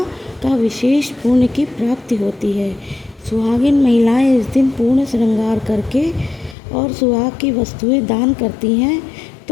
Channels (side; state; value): right; drops out; at 6.6 s